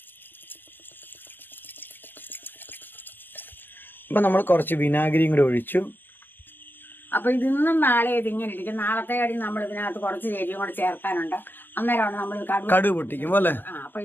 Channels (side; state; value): right; late; 0.096 ms